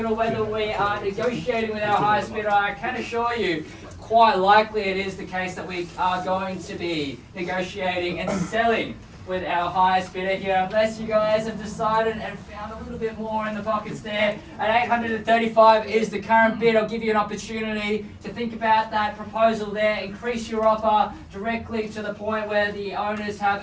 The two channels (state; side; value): identical; both; correlation 1.00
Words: or whether we are negotiating with our highest bidder, I can assure you quite likely it is the case that we are going to be negotiating and selling with our highest bidder here, unless you guys have decided and found a little bit more in the pockets there. At 835 is the current bid. I'll give you an opportunity to think about that proposal there. Increase your offer directly to the point where the owners